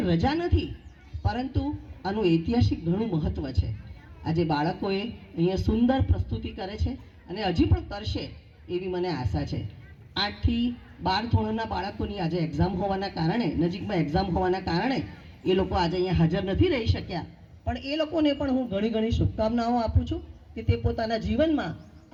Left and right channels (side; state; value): both; identical; correlation 1.00